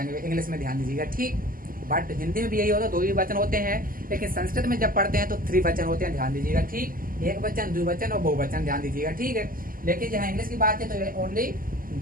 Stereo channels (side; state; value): left; late; 0.41 ms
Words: इंग्लिश में। ध्यान दीजिएगा। ठीक, बट हिंदी में भी यही होता है, 2 ही वचन होते हैं, लेकिन संस्कृत में जब पढ़ते हैं तो 3 वचन होते हैं। ध्यान दीजिएगा। ठीक, एक वचन, द्विवचन और बहुवचन। ध्यान दीजिएगा। ठीक है, लेकिन जहाँ इंग्लिश की बात है तो ओनली